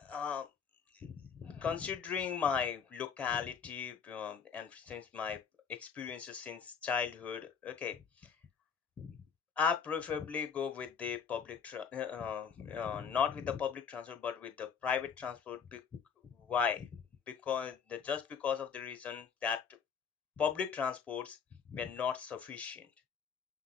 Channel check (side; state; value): right; quieter; 6.8 dB